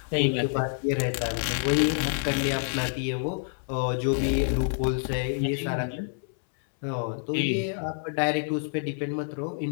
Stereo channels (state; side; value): silent; right; 60 dB below the other